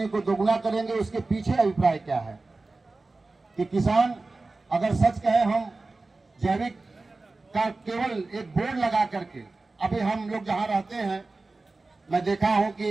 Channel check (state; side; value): quieter; left; 3.4 dB